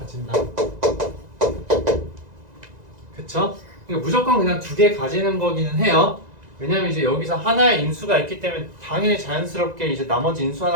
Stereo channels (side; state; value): left; late; 1.9 ms